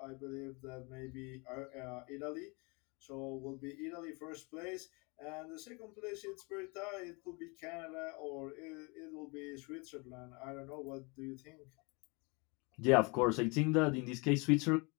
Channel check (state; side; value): quieter; right; 29.5 dB